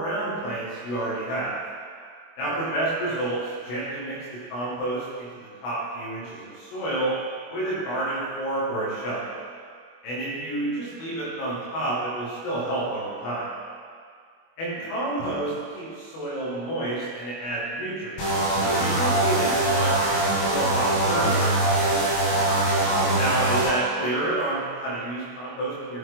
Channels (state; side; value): late; right; 25 ms